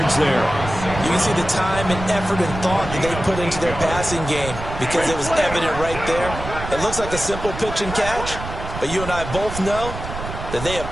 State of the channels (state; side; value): noise; right; rumble, 8 dB below the sound